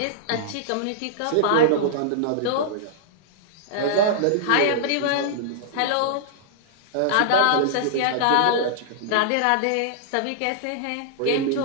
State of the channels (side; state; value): both; different; correlation -0.02